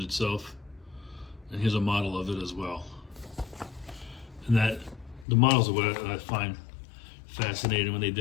itself. And here's a model of it as well. And the models are what I find fascinating when they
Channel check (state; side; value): drops out; right; at 5.2 s